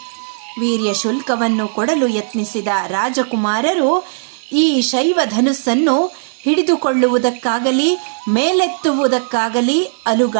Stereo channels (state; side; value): silent; left; digital silence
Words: ವೀರ್ಯ ಶುಲ್ಕವನ್ನು ಕೊಡಲು ಯತ್ನಿಸಿದ ರಾಜಕುಮಾರರು ಈ ಶೈವ ಧನುಸ್ಸನ್ನು ಹಿಡಿದುಕೊಳ್ಳುವುದಕ್ಕಾಗಲಿ ಮೇಲೆತ್ತುವುದಕ್ಕಾಗಲಿ